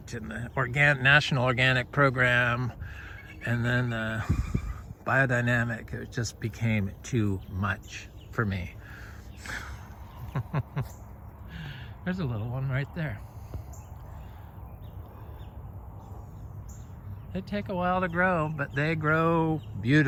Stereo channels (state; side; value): identical; both; correlation 1.00